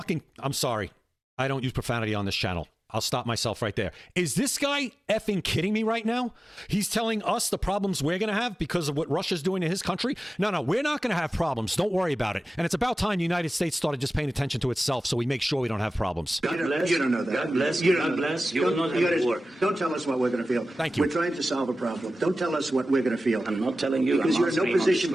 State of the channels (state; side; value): normal; both; correlation 0.95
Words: I'm sorry. I don't use profanity on this channel. I'll stop myself right there. Is this guy effing kidding me right now? He's telling us the problems we're going to have because of what Russia's doing to his country? No, we're not going to have problems. Don't worry about it. And it's about time the United States started just paying attention to itself so we make sure we don't have problems. God bless. You don't know that. God bless. God bless. You will not have a war. Don't tell us what we're going to feel. Thank you. We're trying to solve a problem. Don't tell us what we're going to feel. I'm not telling you. Because you're in no position